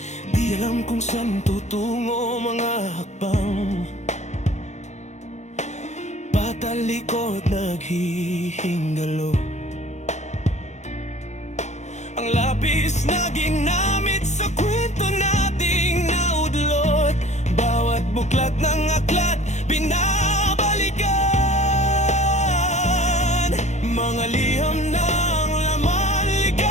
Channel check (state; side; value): late; right; 0.33 ms